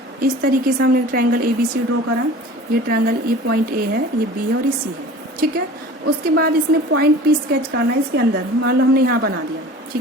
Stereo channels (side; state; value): both; normal; correlation 0.41